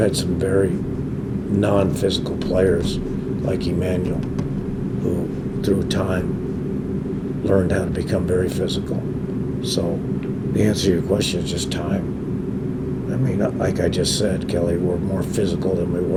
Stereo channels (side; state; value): both; identical; correlation 1.00